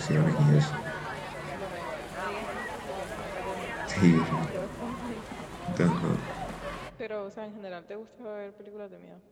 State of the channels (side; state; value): both; identical; correlation 1.00